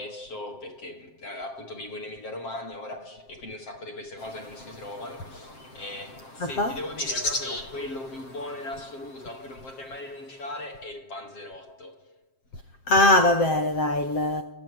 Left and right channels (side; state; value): right; late; 7.6 ms